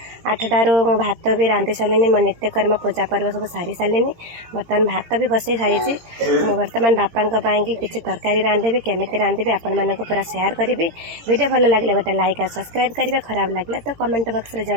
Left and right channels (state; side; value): late; left; 17 ms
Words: 8टारू मो भात भी रांधि सारे मो नित्यकर्म पूजा पर्व सब सारी सारे बर्तमान भात भी बसई सारी मु बर्तमान बापा किसी तरकारी रांधि केमिति रांधि आपण मानक पूरा शेयर करी। वीडियो भल लगे गोटे लाइक और सब्सक्राइब करेंगे, खराब लगे तो कमेंट बॉक्स रे